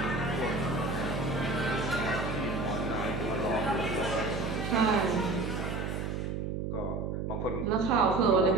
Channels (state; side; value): noise; right; hum, 3 dB below the sound